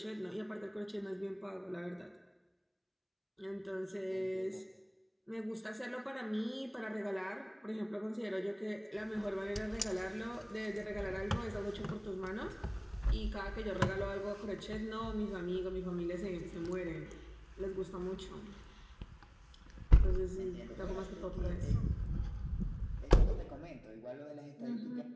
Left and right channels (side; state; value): both; identical; correlation 1.00